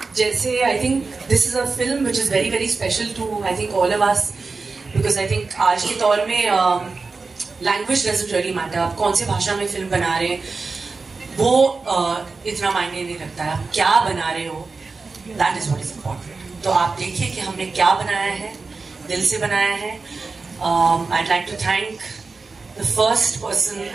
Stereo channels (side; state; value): left; quieter; 4.2 dB